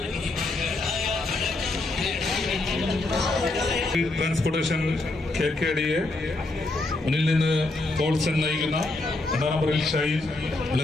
Transportation KKDയെ മുന്നിൽ നിന്ന് പോൾസൺ നയിക്കുന്ന 2ാം നമ്പറിൽ ഷൈൻ,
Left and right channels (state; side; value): quieter; right; 3.0 dB